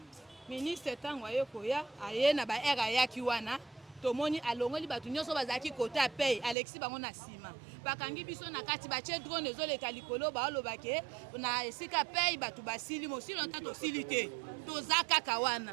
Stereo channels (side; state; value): left; drops out; at 6.6 s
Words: ministre ntango aye koya aye na baere ayaki wana tomoni alongoli bato nyonso bazalaki kote apei Alexis bango na nsima bakangi biso na kati batie drone ezoleka likolo baolobake na esika pei bato basili mosili longtemps tosili te toza kaka